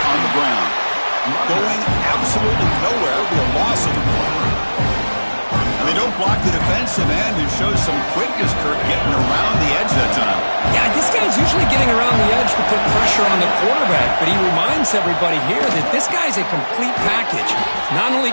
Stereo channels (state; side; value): inverted; both; correlation -1.00